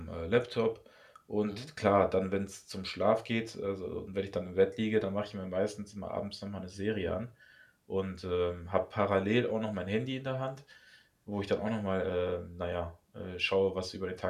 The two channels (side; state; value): both; identical; correlation 1.00